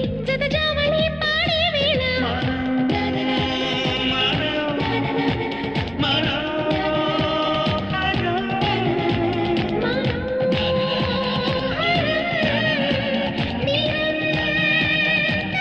జతజావళి పాడే వేళ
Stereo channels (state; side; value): noise; right; rumble, 25 dB below the sound